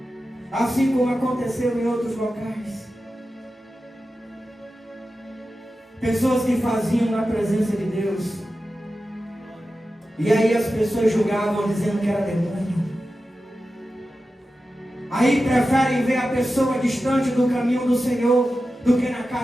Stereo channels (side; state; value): both; normal; correlation 0.93